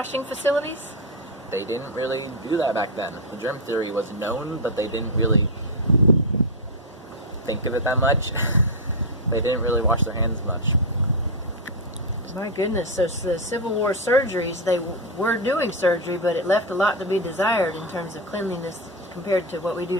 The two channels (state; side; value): normal; both; correlation 0.03